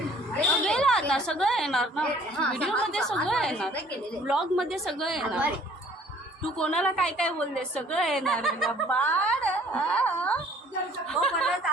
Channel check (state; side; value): normal; both; correlation 0.55